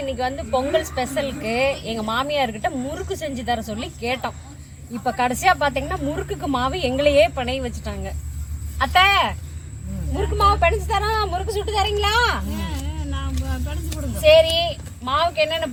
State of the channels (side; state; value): both; identical; correlation 1.00